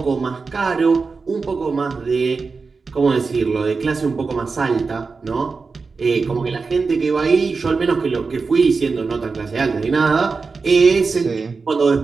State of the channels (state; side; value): quieter; left; 4.5 dB